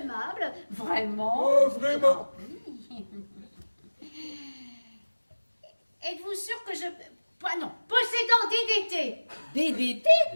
vraiment. Oh, vraiment. Êtes-vous sûr que je... Pas non, possédant DDT. DDT?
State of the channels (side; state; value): both; inverted; correlation -1.00